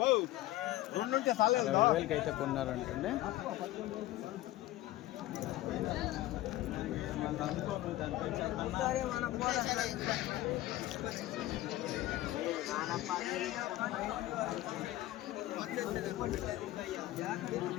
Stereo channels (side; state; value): right; quieter; 15.9 dB